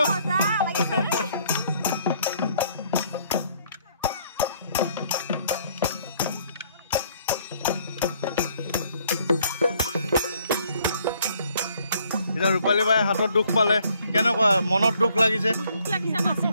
এতিয়া ৰূপালী বাই হাতত দুখ পালে কেনেকুৱা মনত দুখ লাগিছে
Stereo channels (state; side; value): inverted; both; correlation -0.65